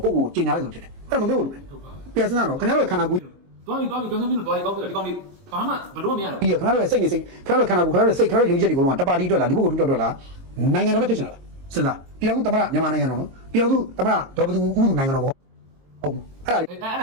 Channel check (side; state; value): left; late; 22 ms